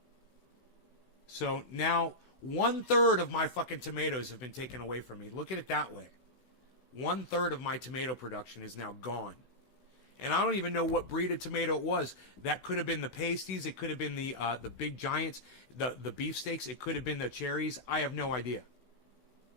So now 1/3 of my fucking tomatoes have been taken away from me. Look at it that way. 1/3 of my tomato production is now gone. And I don't even know what breed of tomato it was. That could have been the pasties. It could have been the big giants, the beefsteaks. It could have been the cherries. I have no idea.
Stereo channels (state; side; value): late; right; 16 ms